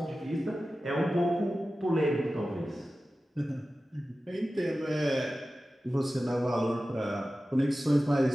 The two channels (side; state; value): both; normal; correlation 0.95